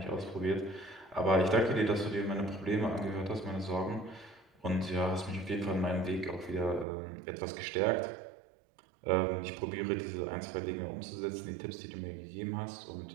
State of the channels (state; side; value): drops out; left; at 6.9 s